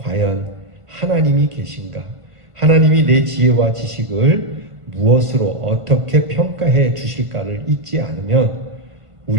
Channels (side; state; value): left; late; 1.5 ms